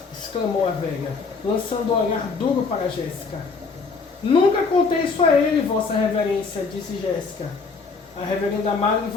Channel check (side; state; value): right; quieter; 4.6 dB